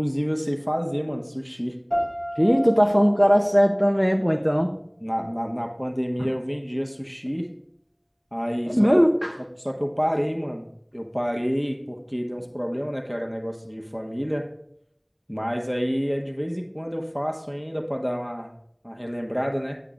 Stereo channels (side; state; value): both; identical; correlation 1.00